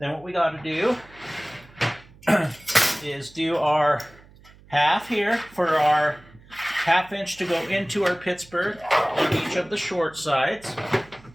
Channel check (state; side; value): noise; right; hum, 25 dB below the sound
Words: what we got to do is do our 1/2 here for our 1/2 inch to go into our Pittsburgh on each of the short sides.